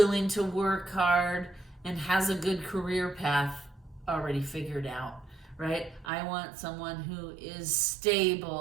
to work hard, and has a good career path already figured out, right? I want someone who is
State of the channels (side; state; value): left; drops out; at 6.1 s